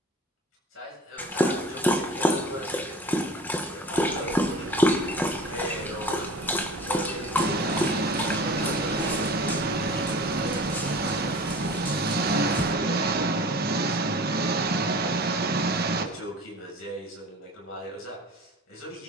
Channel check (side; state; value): both; normal; correlation 0.41